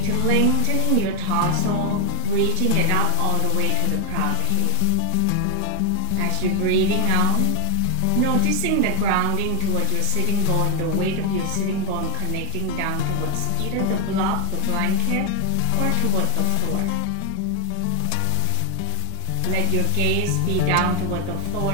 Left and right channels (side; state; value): both; different; correlation 0.00